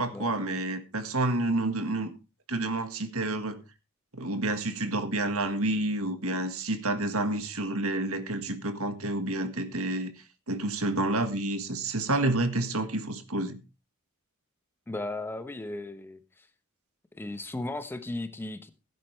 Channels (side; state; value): both; normal; correlation 0.30